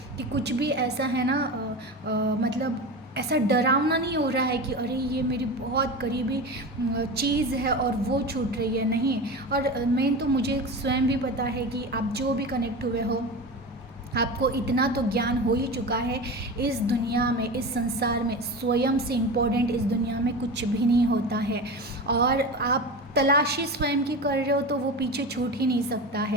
कि कुछ भी ऐसा है ना, मतलब ऐसा डरावना नहीं हो रहा है कि अरे ये मेरी बहुत करीबी चीज़ है और वो छूट रही है, नहीं। और मेन तो मुझे स्वयं भी पता है कि आप जो भी कनेक्ट हुए हो, आपको इतना तो ज्ञान हो ही चुका है, इस दुनिया में, इस संसार में स्वयं से इम्पोर्टेंट इस दुनिया में कुछ भी नहीं होता है। और आप तलाशी स्वयं की कर रहे हो तो वो पीछे छूट ही नहीं सकता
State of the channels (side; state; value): both; normal; correlation 0.27